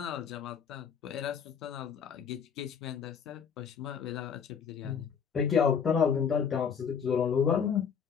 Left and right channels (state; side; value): quieter; right; 7.1 dB